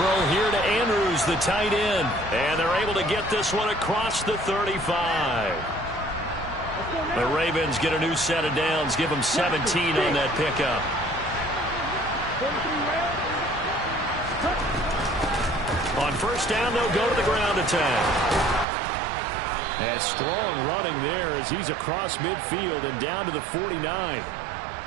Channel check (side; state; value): left; drops out; at 18.7 s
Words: here to Andrews, the tight end. And they're able to get this one across the 35. The Ravens get a new set of downs, give them 17 on that pickup. On first down, they'll go to the ground attack. And strong running there as he's across midfield and down to the 49.